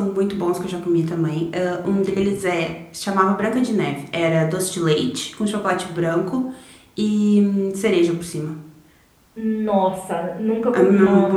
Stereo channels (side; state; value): both; identical; correlation 1.00